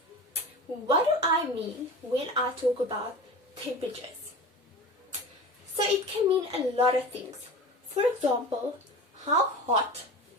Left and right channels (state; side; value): normal; both; correlation 0.33